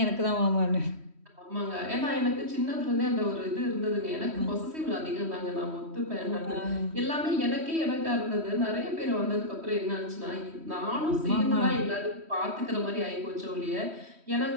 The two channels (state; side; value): late; left; 3.1 ms